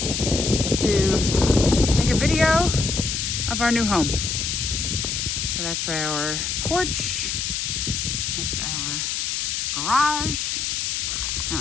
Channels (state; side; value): noise; left; hiss, 1 dB below the sound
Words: to take a video of our new home. So that's our porch. That's our garage. Now